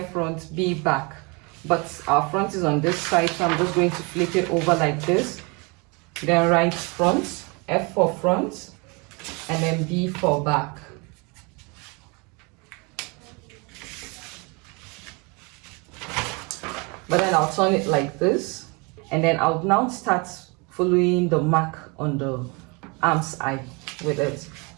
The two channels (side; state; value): left; quieter; 29.8 dB